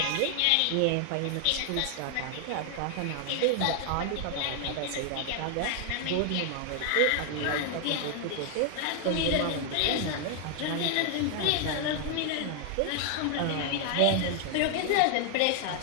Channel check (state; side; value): different; both; correlation 0.00